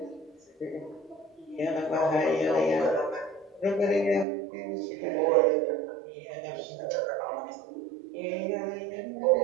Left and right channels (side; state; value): left; drops out; at 4.2 s